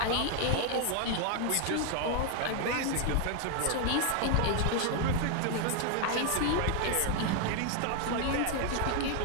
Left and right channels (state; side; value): different; both; correlation 0.00